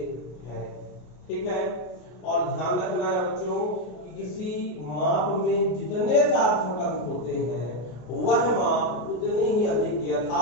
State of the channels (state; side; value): late; right; 33 ms